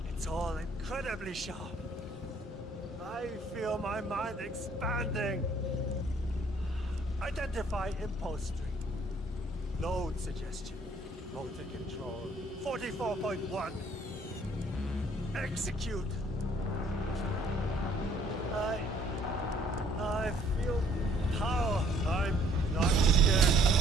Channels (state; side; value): normal; both; correlation 0.60